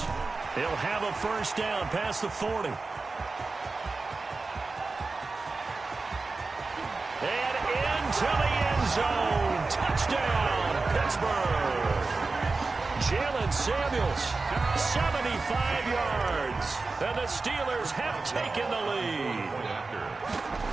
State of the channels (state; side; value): quieter; left; 3.8 dB